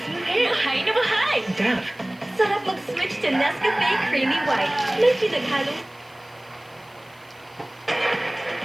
smooth hair. Bahay na bahay! Dove. Sarap mag-switch to Nescafe Creamy White. May pinaghalong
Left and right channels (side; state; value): left; noise; hiss, 29 dB below the sound